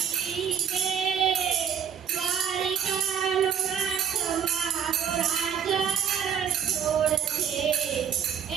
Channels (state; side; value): quieter; left; 8.2 dB